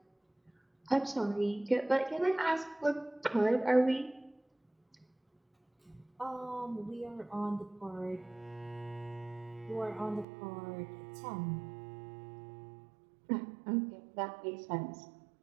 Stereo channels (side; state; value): left; drops out; at 10.2 s